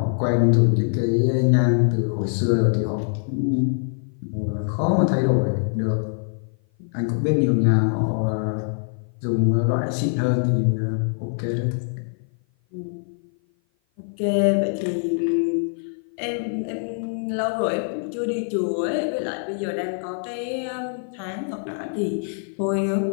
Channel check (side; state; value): right; silent; 56 dB below the other